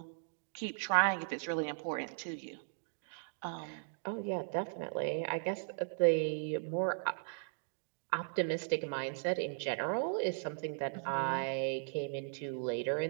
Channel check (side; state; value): left; silent; digital silence